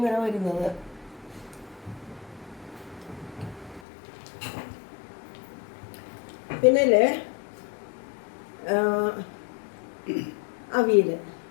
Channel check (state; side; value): drops out; right; at 3.8 s